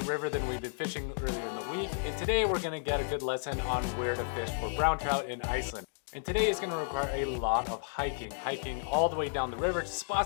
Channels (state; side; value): silent; right; digital silence